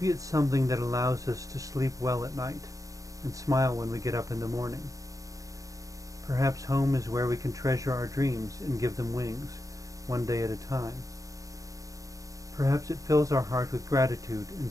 it's something that allows us to sleep well at night and smile when we get up in the morning. Perhaps home is where we can treasure our dreams and give them wings, one day at a time. Perhaps it fills our heart with gratitude and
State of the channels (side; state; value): left; late; 0.16 ms